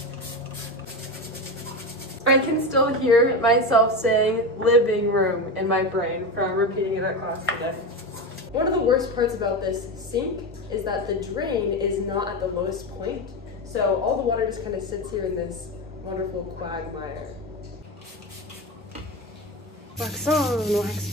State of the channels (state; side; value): normal; both; correlation 0.19